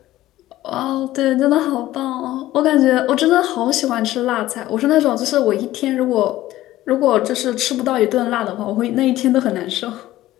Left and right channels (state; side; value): quieter; right; 15.3 dB